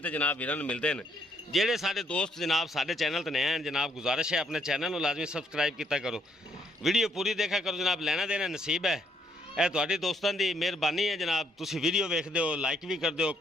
ਜਨਾਬ ਵੀਰਾਂ ਨੂੰ ਮਿਲਦੇ ਨੇ ਜਿਹੜੇ ਸਾਡੇ ਦੋਸਤ ਜਨਾਬ ਸਾਡੇ ਚੈਨਲ ਤੇ ਨਏ ਹਨ ਜਨਾਬ ਗੁਜ਼ਾਰਿਸ਼ ਹੈ ਆਪਣੇ ਚੈਨਲ ਨੂੰ ਲਾਜ਼ਮੀ ਸਬਸਕ੍ਰਾਈਬ ਕੀਤਾ ਕਰੋ ਵੀਡੀਓ ਪੂਰੀ ਦੇਖਿਆ ਕਰੋ ਜਨਾਬ ਲੈਣਾ ਦੇਣਾ ਨਸੀਬ ਹੈ ਇਹ ਤੁਹਾਡੇ ਦੋਸਤਾਂ ਦੀ ਮਿਹਰਬਾਨੀ ਹੈ ਜਨਾਬ ਤੁਸੀਂ ਵੀਡੀਓ ਵੇਖਦੇ ਹੋ ਲਾਈਕ ਵੀ ਕਰਦੇ ਹੋ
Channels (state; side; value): normal; both; correlation 0.71